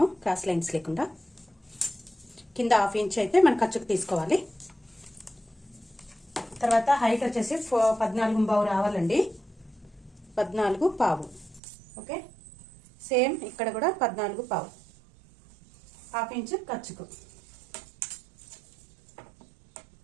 క్రాస్ లైన్స్ లేకుండా కింద ½ ఇంచ్ అయితే మన ఖర్చుకు తీసుకోవాలి. తర్వాత హైట్ వచ్చేసి 14 రావాలండి, 14 ఓకే. సేమ్ ఇక్కడ కూడా 14 ½ ఇంచ్ ఖర్చుకు.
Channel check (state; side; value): drops out; left; at 11.6 s